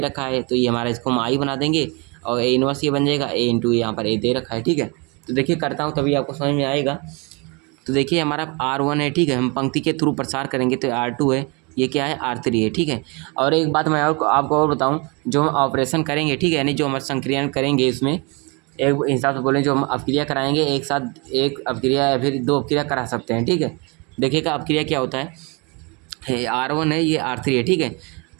है तो ये हमारा इसको हम आई बना देंगे, और ए इनवर्स ये बन जाएगा, ए इंटू यहाँ पर ए दे रखा है। ठीक है, तो देखिए करता हूँ तभी आपको समझ में आएगा। तो देखिए, हमारा R1 है। ठीक है, हम पंक्ति के थ्रू प्रसार करेंगे तो R2 है, ये क्या है, R3 है। ठीक है, और एक बात मैं आपको और बताऊं, जो हम ऑपरेशन करेंगे, ठीक है, यानी जो हम संक्रियन करेंगे इसमें एक हिसाब से बोलें, जो हम अपक्रिया कराएंगे एक साथ एक अपक्रिया या फिर 2 अपक्रिया करा सकते हैं। ठीक है, देखिएगा अपक्रिया क्या होता है, R1 है, ये R3 है। ठीक है,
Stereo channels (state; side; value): quieter; left; 30.1 dB